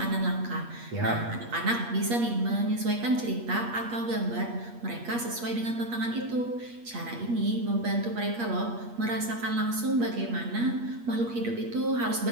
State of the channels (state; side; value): late; left; 8.5 ms